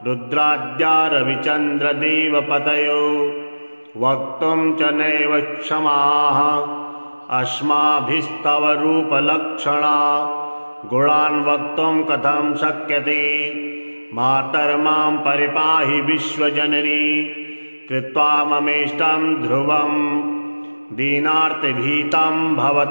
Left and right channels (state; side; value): inverted; both; correlation -1.00